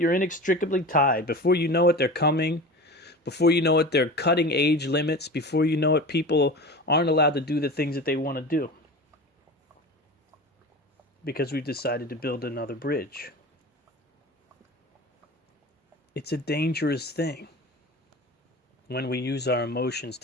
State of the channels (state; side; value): normal; both; correlation 0.32